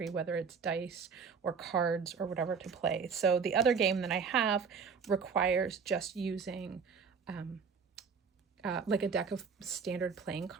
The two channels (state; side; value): quieter; left; 5.9 dB